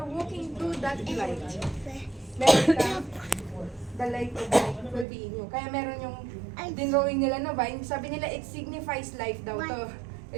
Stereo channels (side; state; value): left; drops out; at 5.1 s